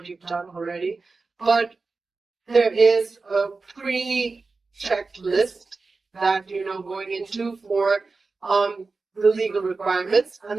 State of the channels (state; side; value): quieter; left; 4.0 dB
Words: you've done already, but there is a pre-checked list that going into for the legal requirements, and